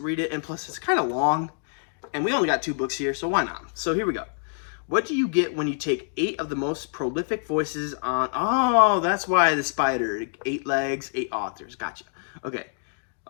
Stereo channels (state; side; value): silent; right; digital silence